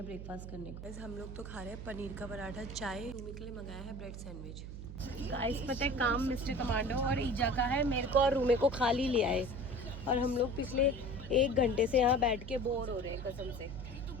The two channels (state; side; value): noise; right; hum, 10 dB below the sound